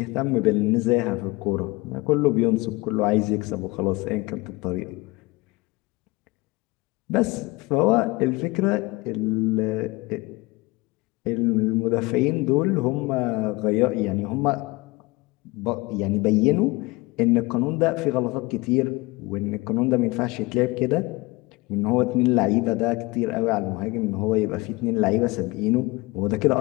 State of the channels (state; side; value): quieter; right; 23.0 dB